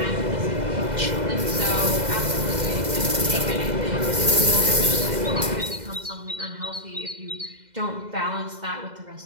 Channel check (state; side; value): late; left; 2.0 ms